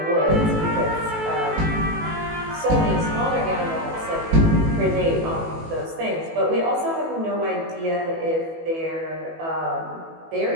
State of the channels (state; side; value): late; left; 18 ms